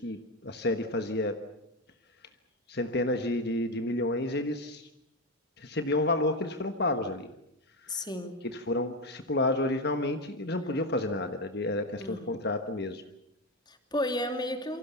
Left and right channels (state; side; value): normal; both; correlation 0.13